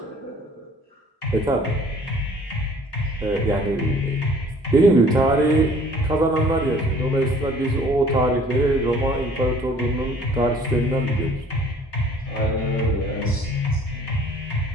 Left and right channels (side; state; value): both; normal; correlation 0.54